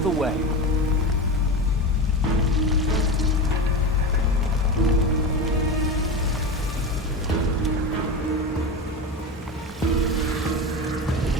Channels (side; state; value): both; normal; correlation 0.23